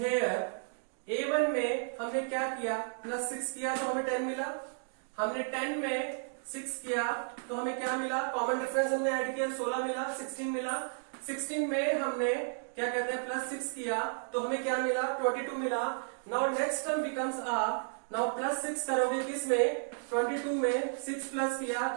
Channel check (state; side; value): silent; left; digital silence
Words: A1 में हमने क्या किया, प्लस 6 किया तो हमें 10 मिला. हमने 10 में 6 किया तो हमें क्या मिला, कॉमन डिफरेंस हमने ऐड किया 16 मिला, 16 मिला. 16 में हमने क्या कहते हैं प्लस 6 किया तो हमें क्या मिला, 22 मिला. Now next term becomes now plus 6 करोगे किसमें, 22 में 6 प्लस किया